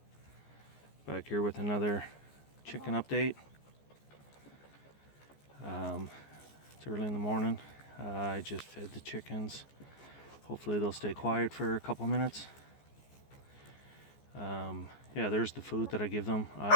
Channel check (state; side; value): late; right; 14 ms